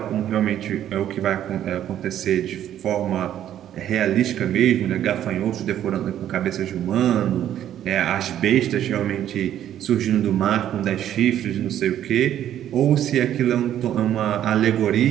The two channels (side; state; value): left; quieter; 11.1 dB